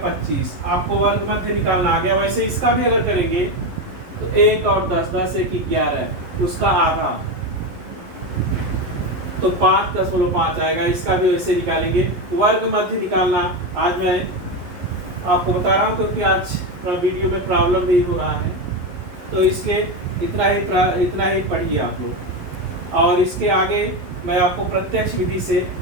आपको वर्ग मध्य निकालना आ गया। वैसे इसका भी अगर करेंगे तो 1 और 10, 10 1 11, उसका आधा तो 5.5 आएगा। इसका भी वैसे निकालेंगे। वर्ग मध्य निकालना आज मैं आपको बता रहा हूँ क्योंकि आज थोड़ा वीडियो में प्रॉब्लम भी हो रहा है, तो इसलिए इतना ही पढ़िए आप लोग, और इसके आगे मैं आपको प्रत्यक्ष विधि से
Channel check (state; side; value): late; left; 11 ms